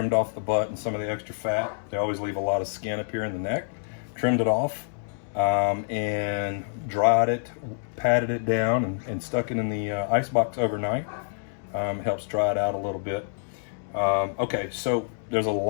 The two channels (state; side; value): silent; right; digital silence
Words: off the butt and some of the extra fat. They always leave a lot of skin up here in the neck. Trimmed it off and dried it, patted it down, and stuck it in the ice box overnight. Helps dry it out a little bit. Okay, so there's a